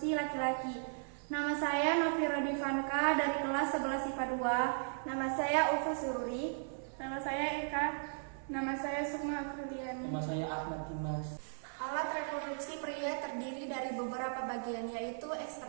laki-laki. Nama saya Novira Divanka dari kelas 11 IPA 2. Nama saya Ulfa Sururi. Nama saya Eka. Nama saya Sukma Apriliani. Nama saya Ahmad Dimas. Alat reproduksi pria terdiri dari beberapa bagian, yaitu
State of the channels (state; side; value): silent; left; 53 dB below the other